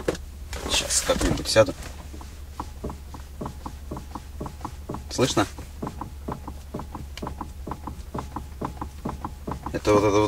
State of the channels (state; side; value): identical; both; correlation 1.00